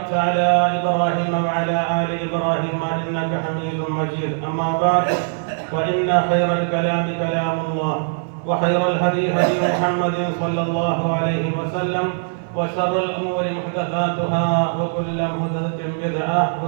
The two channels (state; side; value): silent; left; 65 dB below the other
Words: على إبراهيم وعلى آل إبراهيم إنك حميد مجيد أما بعد فإن خير الكلام كلام الله وخير الهدي هدي محمد صلى الله عليه وسلم وشر الأمور محدثاتها وكل محدثة بدعة